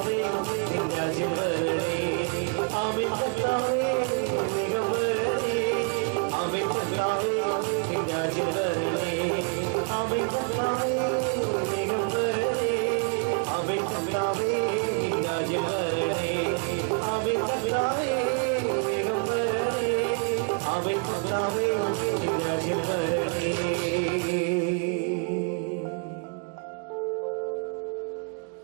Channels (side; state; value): left; quieter; 36.7 dB